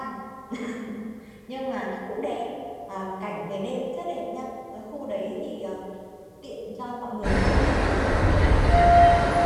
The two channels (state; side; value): identical; both; correlation 1.00